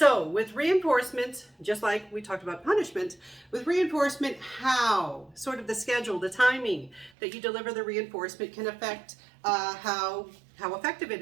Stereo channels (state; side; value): drops out; left; at 7.1 s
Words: with reinforcement, just like we talked about punishment, with reinforcement, how, sort of the schedule, the timing that you deliver the reinforcement can affect how effective it